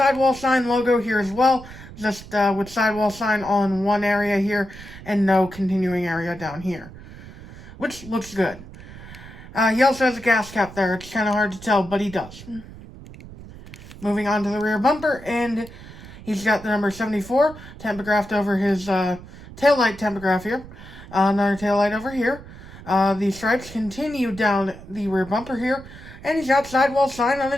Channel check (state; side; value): noise; right; rumble, 16 dB below the sound